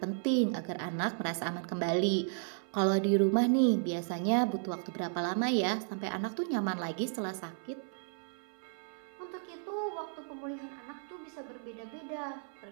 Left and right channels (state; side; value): silent; left; 55 dB below the other